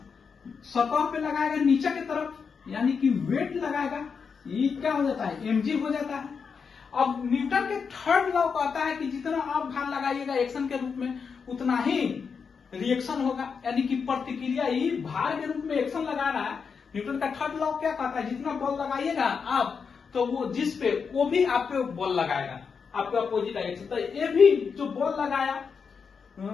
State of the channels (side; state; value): right; quieter; 5.8 dB